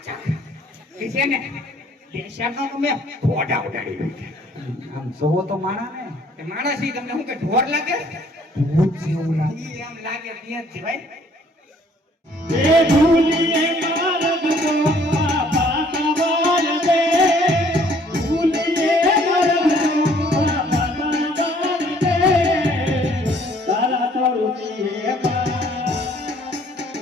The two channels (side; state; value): both; normal; correlation 0.60